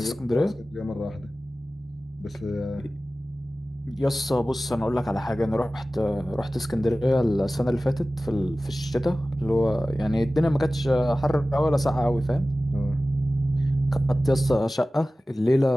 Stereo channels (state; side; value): normal; both; correlation 0.96